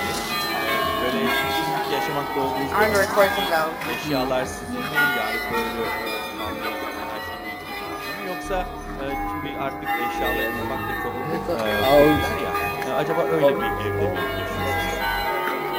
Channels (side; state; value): both; identical; correlation 1.00